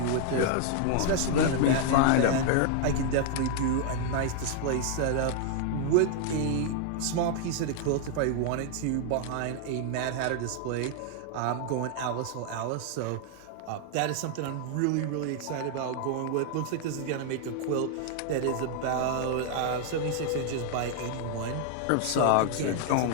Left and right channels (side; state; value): both; different; correlation 0.00